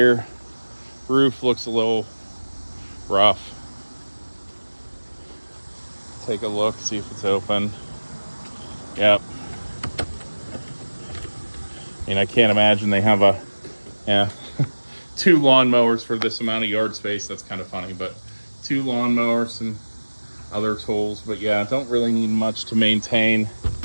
Roof looks a little rough. Take a look, see if it's open. Yep. I mean, I can't imagine they have two lawnmowers for this amount of yard space. That's kind of funny, but 2 lawnmowers and other tools. But yeah, don't really need much to maintain.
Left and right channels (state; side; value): inverted; both; correlation -1.00